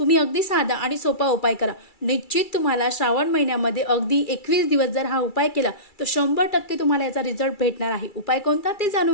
अगदी साधा आणि सोपा उपाय करा. निश्चित तुम्हाला श्रावण महिन्यामध्ये अगदी 21 दिवस जर हा उपाय केला तर 100% तुम्हाला याचा रिझल्ट भेटणार आहे. उपाय कोणता ते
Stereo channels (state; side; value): late; right; 2.3 ms